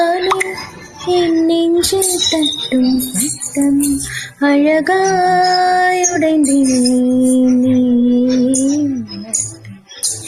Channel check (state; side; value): identical; both; correlation 1.00